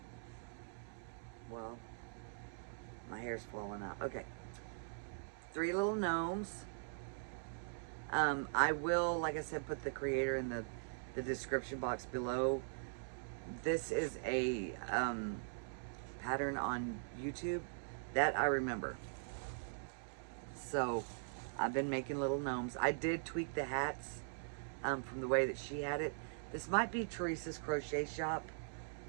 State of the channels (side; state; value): left; silent; digital silence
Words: Well, my hair's falling out. Okay. 3 little gnomes. I will, like I said, put the creator in the description box below. This is a pattern on YouTube that I remember. So I've been making little gnomes. I did tweak the hats from the way that she had it. This might be Teresa's crochet shop.